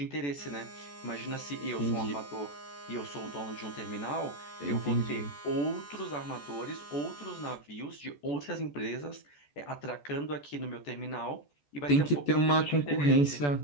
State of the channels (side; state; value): right; late; 14 ms